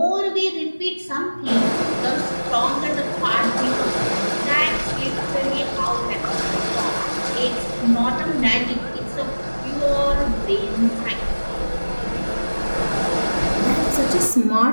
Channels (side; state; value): both; inverted; correlation -1.00